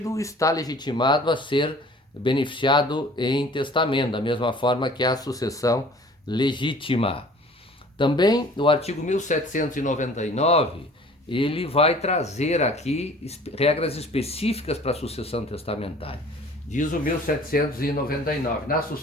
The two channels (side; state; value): both; normal; correlation 0.49